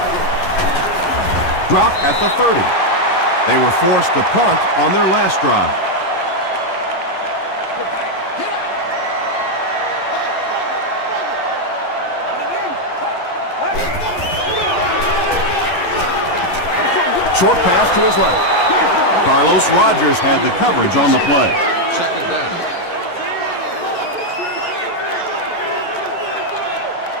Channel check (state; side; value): late; right; 11 ms